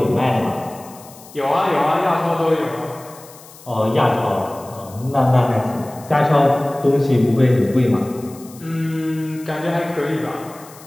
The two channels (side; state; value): left; noise; hiss, 21 dB below the sound